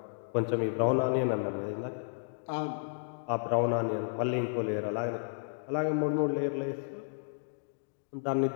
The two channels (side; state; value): right; silent; digital silence